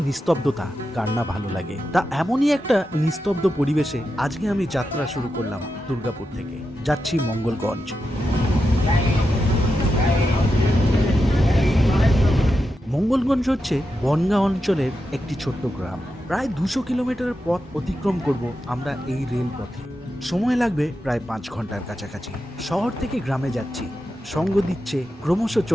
নিস্তব্ধতা কার না ভালো লাগে। তা এমনই একটা নিস্তব্ধ পরিবেশে আজকে আমি যাত্রা শুরু করলাম দুর্গাপুর থেকে। যাচ্ছি মঙ্গলগঞ্জ। মঙ্গলগঞ্জ হচ্ছে বনগাঁ অঞ্চলের একটি ছোট্ট গ্রাম। প্রায় 200 কিলোমিটার পথ অতিক্রম করব আমরা এই রেল পথে। সময় লাগবে প্রায় 5 ঘন্টার কাছাকাছি। শহর থেকে গ্রামে যাচ্ছি, সঙ্গ দিচ্ছে ক্রমশ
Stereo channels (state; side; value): normal; both; correlation 0.88